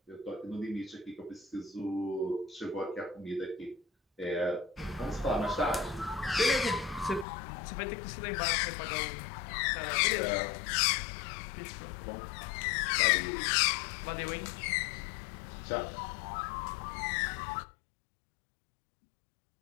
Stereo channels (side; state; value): right; drops out; at 7.2 s